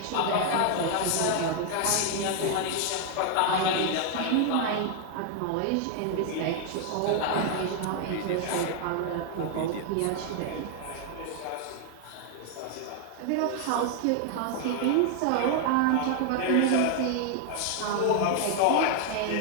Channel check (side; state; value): both; different; correlation 0.00